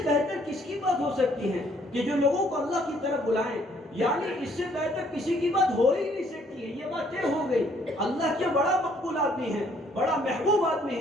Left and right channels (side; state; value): both; normal; correlation 0.64